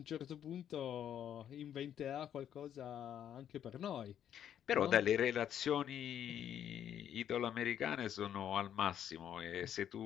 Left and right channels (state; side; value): quieter; right; 9.9 dB